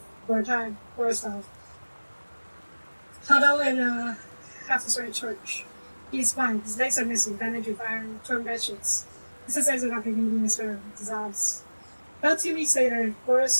for a time, Borislav. Huddle in a half-destroyed church. He is fine. His legs are missing, bandaged with iron, torn bedsheets. His legs are not beginning his firm, dissolves. About 2 weeks later,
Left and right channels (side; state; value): both; inverted; correlation -1.00